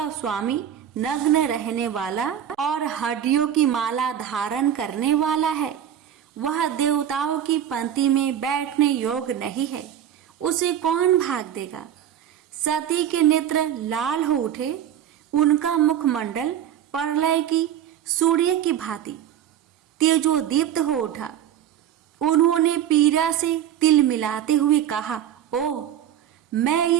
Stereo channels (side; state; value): left; quieter; 10.2 dB